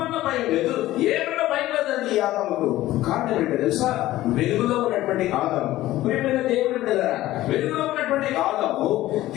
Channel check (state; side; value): quieter; right; 15.7 dB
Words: భయం లేదు, ఏమన్నా భయం లేదండి ఈ ఆదాముకు. కారణం ఏంటో తెలుసా? వెలుగులో ఉన్నటువంటి ఆదాము. ప్రియమైన దేవుడు వెలుగులో ఉన్నటువంటి ఆదాము,